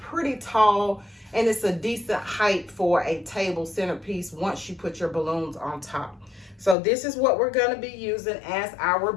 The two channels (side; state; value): right; drops out; at 6.8 s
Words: tall. And it's a decent height for a table centerpiece once you put your balloons on top. So this is what we're gonna be using as our